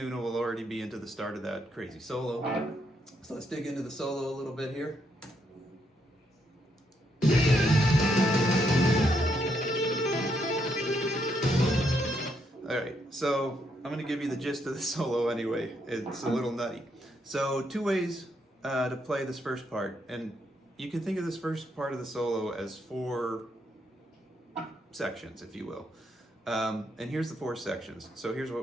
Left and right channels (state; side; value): normal; both; correlation 0.77